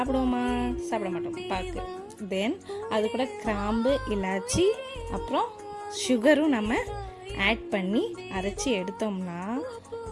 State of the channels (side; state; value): both; identical; correlation 1.00